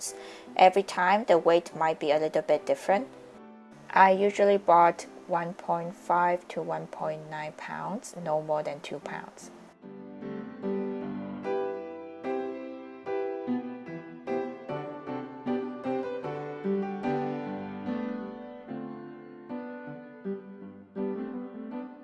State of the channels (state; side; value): identical; both; correlation 1.00